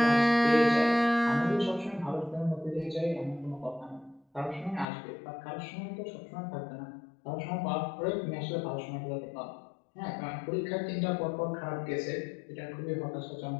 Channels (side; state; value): right; drops out; at 4.9 s